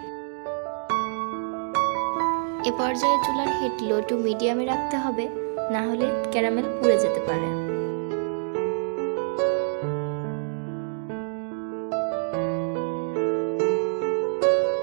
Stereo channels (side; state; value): left; silent; digital silence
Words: এ পর্যায়ে চুলার হিট লো টু মিডিয়ামে রাখতে হবে, না হলে ক্যারামেল পুড়ে যেতে পারে।